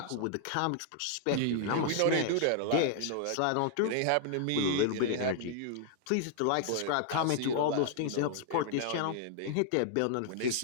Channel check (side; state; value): both; different; correlation -0.01